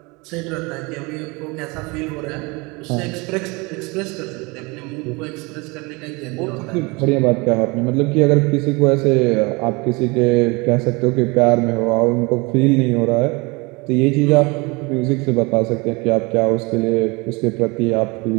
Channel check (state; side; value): quieter; left; 26.5 dB